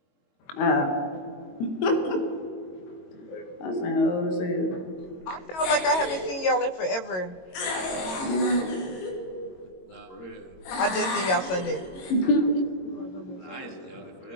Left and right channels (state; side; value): late; right; 22 ms